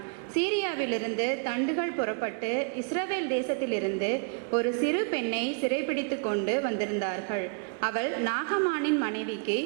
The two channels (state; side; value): quieter; left; 38.8 dB